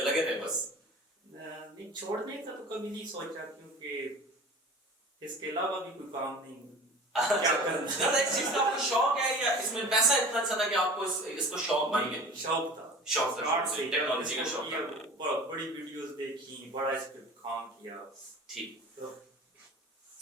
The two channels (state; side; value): normal; both; correlation 0.39